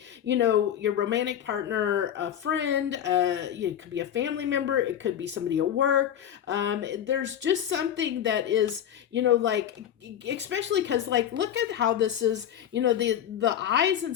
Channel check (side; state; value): right; quieter; 10.0 dB